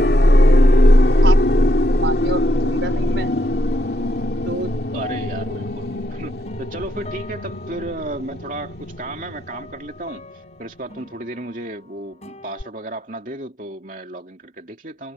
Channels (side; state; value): both; normal; correlation 0.78